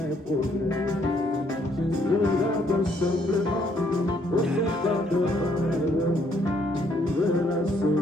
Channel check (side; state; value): both; normal; correlation 0.69